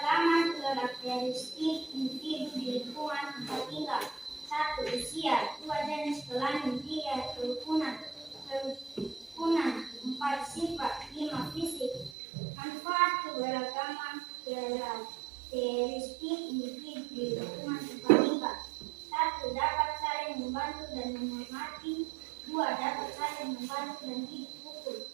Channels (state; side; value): drops out; left; at 12.1 s